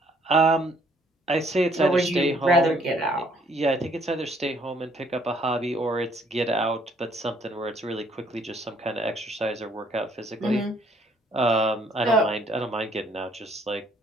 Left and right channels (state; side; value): normal; both; correlation 0.64